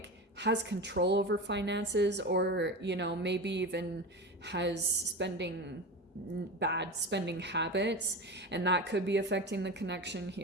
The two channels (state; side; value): normal; both; correlation 0.26